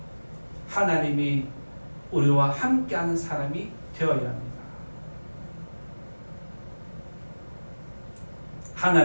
하나님이 우리와 함께하는 사람이 되어야 합니다.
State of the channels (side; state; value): both; inverted; correlation -1.00